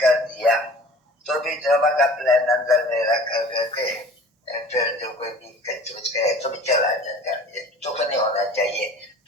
दिया तो भी ड्रामा का प्लान अंदर में रख करके फिर जो कोई भी कुछ कहे तो भी चला जाता है, तो नहीं होना चाहिए,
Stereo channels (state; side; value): normal; both; correlation 0.45